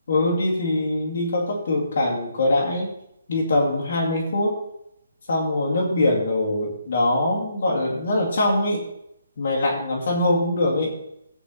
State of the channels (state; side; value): inverted; both; correlation -0.74